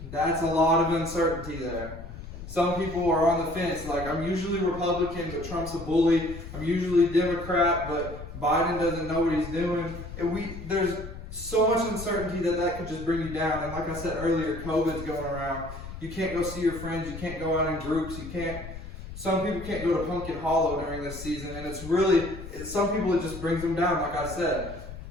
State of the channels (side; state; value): left; noise; rumble, 11 dB below the sound